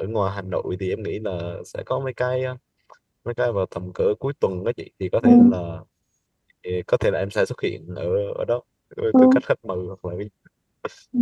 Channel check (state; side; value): identical; both; correlation 1.00